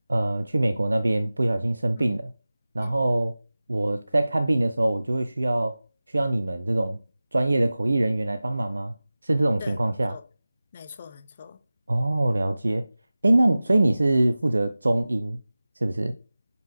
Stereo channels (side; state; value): both; inverted; correlation -0.97